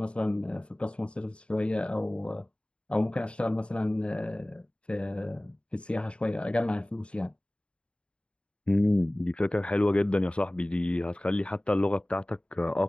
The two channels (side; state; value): right; late; 0.056 ms